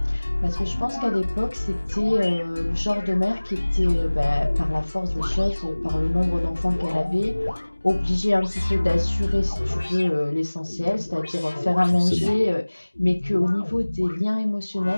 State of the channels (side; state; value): both; inverted; correlation -1.00